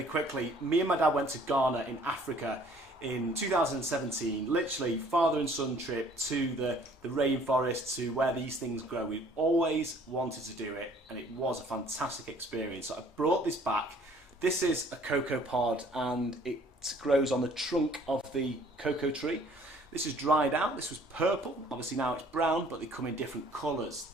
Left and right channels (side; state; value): both; normal; correlation 0.56